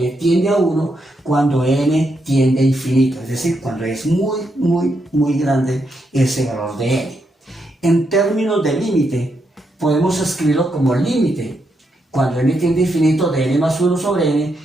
tiende a 1 cuando n tiende a infinito, es decir, cuando es muy grande ese valor de n. En términos de límite, podemos escribirlo como límite. Cuando n tiende a infinito de n más 1 sobre n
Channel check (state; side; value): normal; both; correlation 0.81